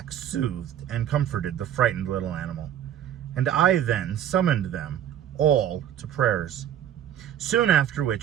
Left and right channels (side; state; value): left; quieter; 10.5 dB